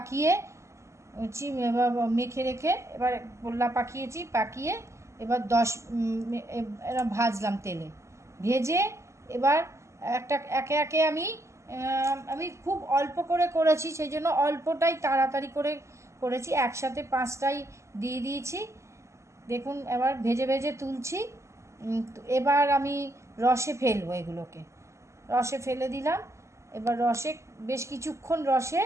এবার মেখে রেখে এবার গোল্লা পাকিয়ে এবার এবার ভাজলাম তেলে, ভেজে এবার একে একে আমি খুব অল্প করে করেছি, সেই জন্য অল্পটাই তাড়াতাড়ি করে করেছি, একসাথে 5টাই দিয়ে দিয়েছি। দেখুন এবার ভেজে ভেজে তুলছি। এবার আমি রসে ফেলবো, এগুলোকে রসে ফেলে দিলাম। এবার রসে বেশ কিছুক্ষণ রসে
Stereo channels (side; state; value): left; late; 0.14 ms